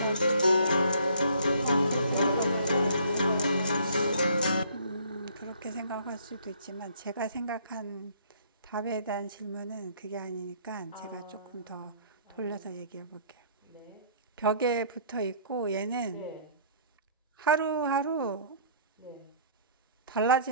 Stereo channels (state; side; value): inverted; both; correlation -0.57